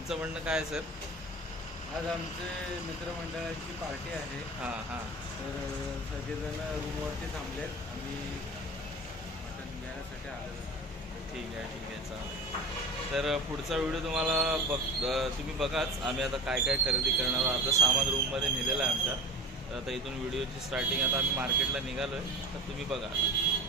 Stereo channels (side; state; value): both; normal; correlation 0.34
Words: म्हणणं काय आहे सर? आज आमचे मित्रमंडळाची पार्टी आहे. हां. तर सगळेजण रूमवरती थांबलेत. आम्ही मटण घ्यायसाठी आलेलो. ठीक आहे चालेल. तर पुढचा व्हिडिओ तुम्हाला तुम्ही बघाच. आम्ही आता काय काय खरेदी करणार आहोत. आता सामान रूममध्ये नेलेलं आहे आमच्या. तर आता इथून व्हिडिओची स्टार्टिंग. आता आम्ही मार्केटला निघालो आहे, तर तुम्ही बघा.